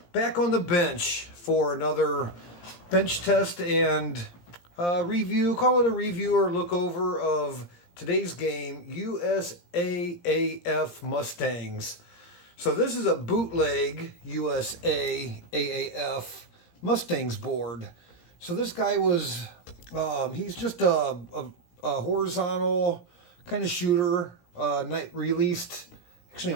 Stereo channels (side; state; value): right; late; 17 ms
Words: back on the bench for another bench test and review, call it a review or look over of today's game, USA Mustangs. So this is a bootleg USA AAF Mustangs board. So this guy was, he's just a horizontal kind of shooter, released actually